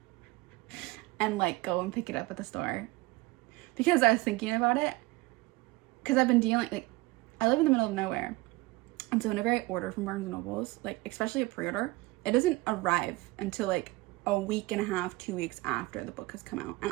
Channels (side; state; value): left; quieter; 21.4 dB